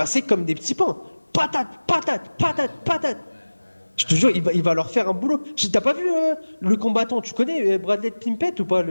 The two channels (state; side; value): inverted; both; correlation -1.00